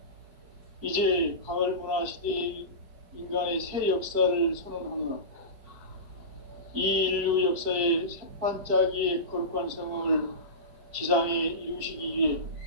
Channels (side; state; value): left; late; 4.6 ms